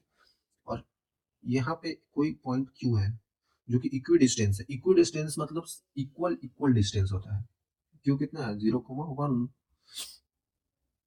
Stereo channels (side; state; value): both; identical; correlation 1.00